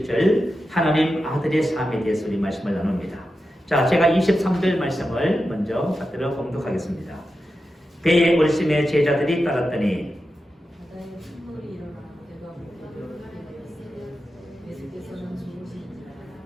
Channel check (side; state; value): both; normal; correlation 0.90